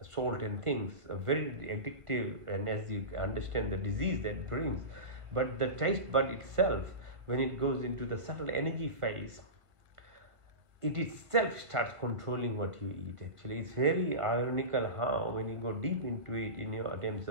salt and things, are very addictive, and as you understand the disease that brings. But the taste bud itself, when it goes into the subtle energy phase, it itself starts controlling what you eat. Actually, it's very ironical how when you go deep into it in your terms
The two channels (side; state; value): left; late; 1.5 ms